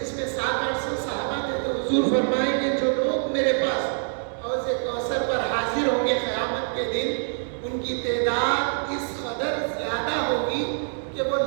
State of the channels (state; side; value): silent; left; digital silence